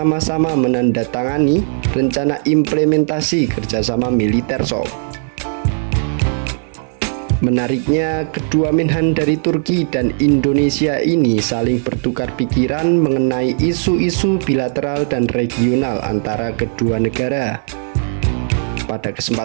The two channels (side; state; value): left; silent; 56 dB below the other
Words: menandatangani rencana implementasi kerjasama militer sob. Menariknya, kedua Menhan dari Turki dan Indonesia ini saling bertukar pikiran mengenai isu-isu bilateral dan regional antara kedua negara. Pada